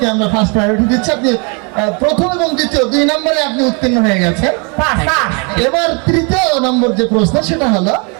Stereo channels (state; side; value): quieter; left; 34.1 dB